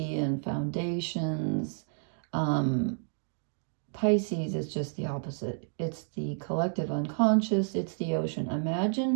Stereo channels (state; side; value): silent; left; digital silence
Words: and foundations. Pisces is just the opposite. It's the collective unconscious. It's the ocean.